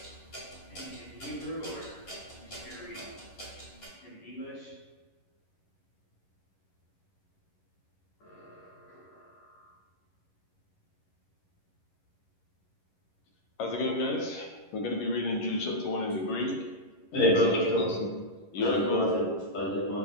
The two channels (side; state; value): right; late; 11 ms